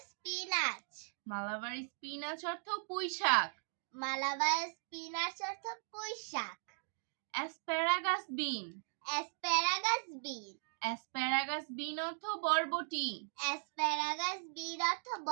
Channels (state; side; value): silent; left; digital silence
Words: spinach. Malabar spinach অর্থ পুঁই শাক। মালাবার স্পিনাচ অর্থ পুঁই শাক। Asparagus bean. Asparagus bean. Asparagus bean অর্থ বরবটি। অ্যাসপ্যারাগাস বিন অর্থ